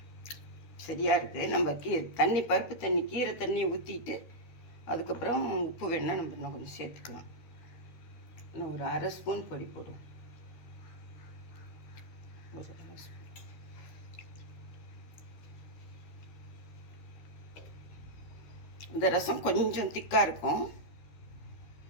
சரியாக இருக்குது. நம்ம தண்ணி பருப்பு தண்ணி கீரை தண்ணியை ஊற்றிட்டு அதுக்கப்புறம் உப்பு வேணால் நம்ம இன்னும் கொஞ்சம் சேர்த்துக்கலாம். இன்னும் ஒரு 1/2 ஸ்பூன் பொடி போடும். ஒரு 1/2 ஸ்பூன். இந்த ரசம் கொஞ்சம் திக்காக இருக்கும்.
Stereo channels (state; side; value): late; right; 13 ms